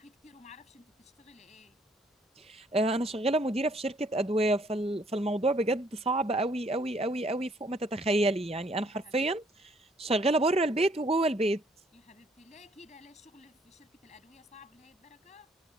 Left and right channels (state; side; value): normal; both; correlation 0.64